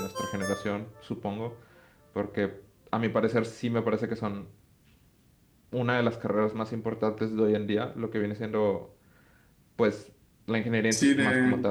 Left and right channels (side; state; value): both; identical; correlation 1.00